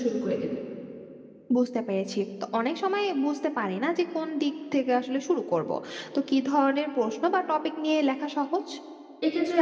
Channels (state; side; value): identical; both; correlation 1.00